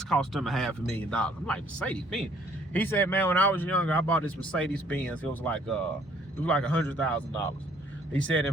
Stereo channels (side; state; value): both; normal; correlation 0.62